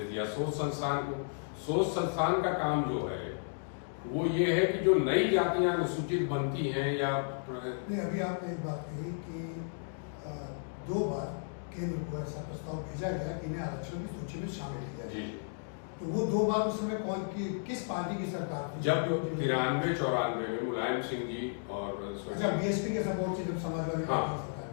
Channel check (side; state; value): right; silent; digital silence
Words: दिया सोच संस्थान को। सोच संस्थान का काम जो है वो ये है कि जो नई जातियां अनुसूचित बनती हैं या अभी आपने एक बात कही कि 2 बार केंद्र को ऐसा प्रस्ताव भेजा गया कि इन्हें आरक्षण की सूची में शामिल किया जाए, तो वो 2 बार उस समय किस पार्टी की सरकार थी? जब 93-94 में मुलायम सिंह जी और बीएसपी के सपोर्ट से जब समाजवादी पार्टी की सरकार,